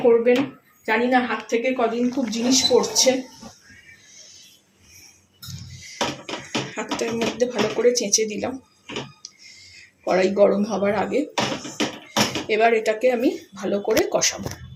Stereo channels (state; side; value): identical; both; correlation 1.00